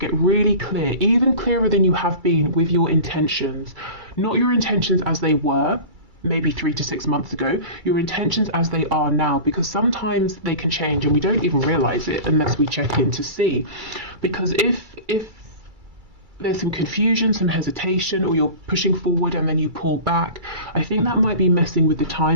really clear, even clearer than you have been with your intentions. Not your intentions as they were, maybe 3 to 6 months ago, your intentions as they are now, because sometimes they can change and we don't even realize it unless we check in to see. Because if there's some confusion, some hesitation, or you're pushing forward and then you pull back, I think that might be messing with the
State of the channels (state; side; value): late; left; 2.3 ms